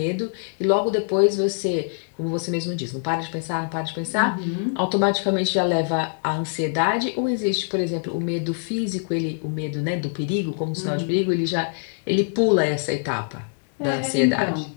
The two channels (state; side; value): silent; right; digital silence